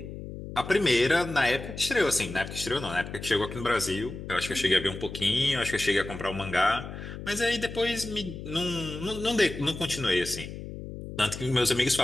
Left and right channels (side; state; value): left; noise; hum, 10 dB below the sound